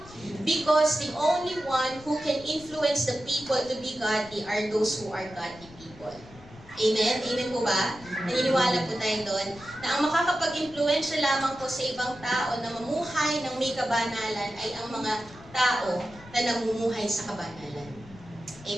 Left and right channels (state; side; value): noise; left; rumble, 20 dB below the sound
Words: Because the only one who can influence the people to be godly are those who are godly people. Amen? Amen po ba? Naniniwala po tayo doon na ang makakapag-impluensya lamang po sa ibang tao na mamuhay ng may kabanalan ay ang mga tao na namumuhay sa kabanalan.